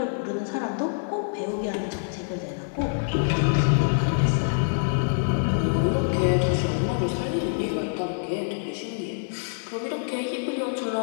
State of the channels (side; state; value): right; silent; digital silence